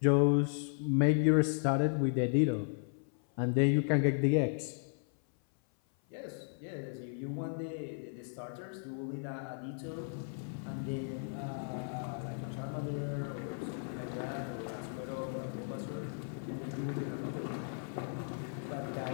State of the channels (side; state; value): right; silent; 54 dB below the other